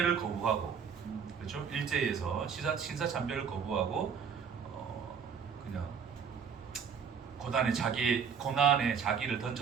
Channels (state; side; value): quieter; left; 6.9 dB